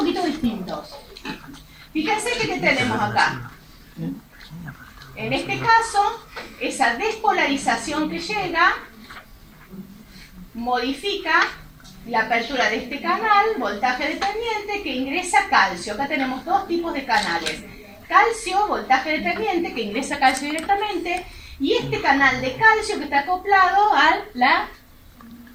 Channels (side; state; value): both; identical; correlation 1.00